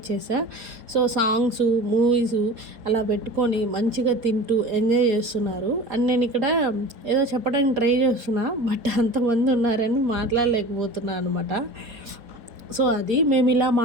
సో, సాంగ్స్, మూవీస్ అలా పెట్టుకొని మంచిగా తింటూ ఎంజాయ్ చేస్తున్నారు. అండ్ నేను ఇక్కడ ఏదో చెప్పడానికి ట్రై చేస్తున్నా, బట్ అంతమంది ఉన్నారని మాట్లాడలేకపోతున్నా అనమాట. సో, అది మేము ఇలా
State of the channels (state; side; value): late; left; 4.2 ms